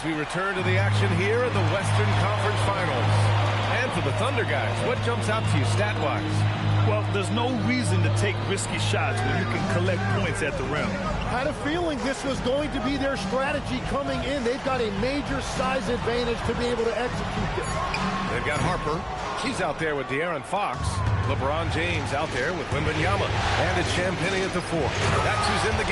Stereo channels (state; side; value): identical; both; correlation 1.00